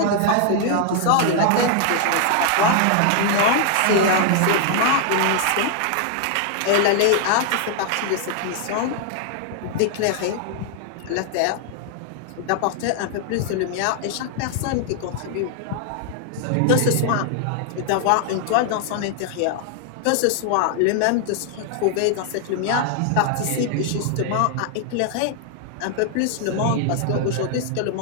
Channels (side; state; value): both; different; correlation 0.00